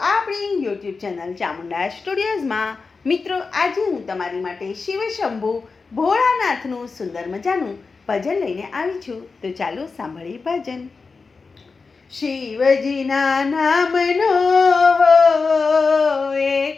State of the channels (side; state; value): right; quieter; 4.5 dB